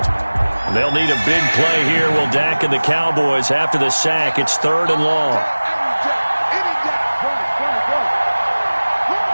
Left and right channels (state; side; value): inverted; both; correlation -1.00